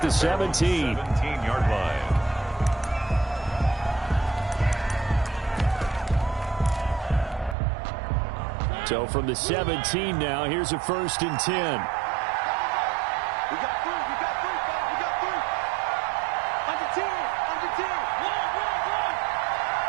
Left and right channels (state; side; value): drops out; left; at 7.6 s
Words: the 17. 17-yard line. So from the 17 now, here's a 1st and 10. We got three, we got three, we got three. Under 10, under